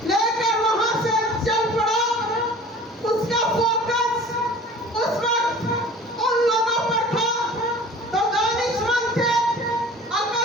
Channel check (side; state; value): both; normal; correlation 0.43